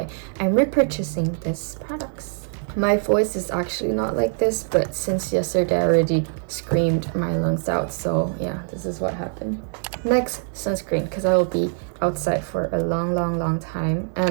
I'm repurchasing this products. My voice is actually not like this, but since yesterday I already screamed my lungs out, so yeah, this is what happened. Next, sunscreen, because I will be outside for a long time,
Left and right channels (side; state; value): left; silent; 58 dB below the other